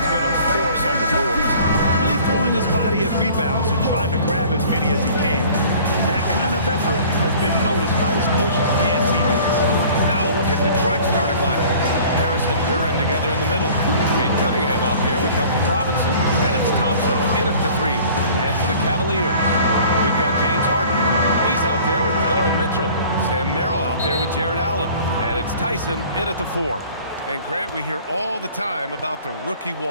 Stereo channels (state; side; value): inverted; both; correlation -0.49